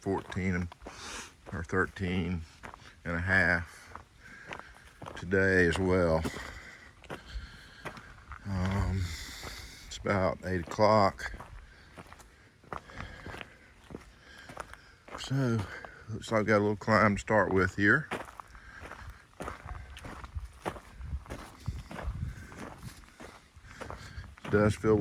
or 13 and a half today as well. It's about 8 o'clock. So, looks like I've got a little climb to start with here. It does feel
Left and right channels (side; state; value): both; identical; correlation 1.00